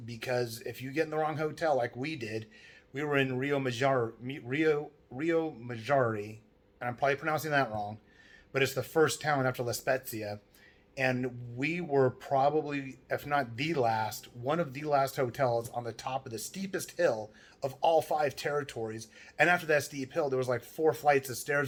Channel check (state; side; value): identical; both; correlation 1.00